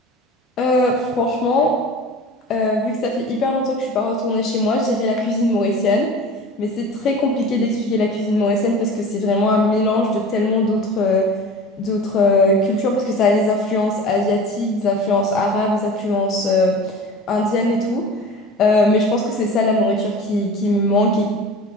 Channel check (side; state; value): both; normal; correlation 0.37